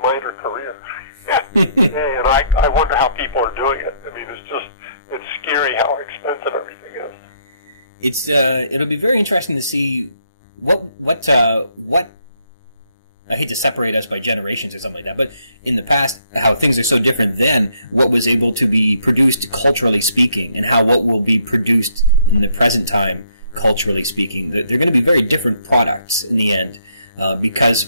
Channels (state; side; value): inverted; both; correlation -0.69